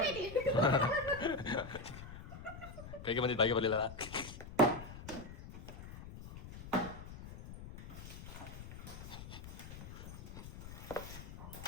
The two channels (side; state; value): left; noise; rumble, 12 dB below the sound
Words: ಕೈಗೆ ಬಂದಿದ್ದು ಬಾಯಿಗೆ ಬರಲಿಲ್ಲ